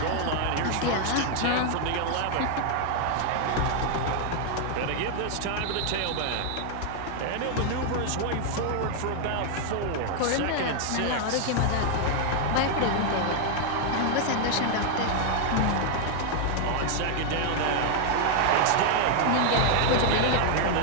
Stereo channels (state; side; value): different; both; correlation 0.00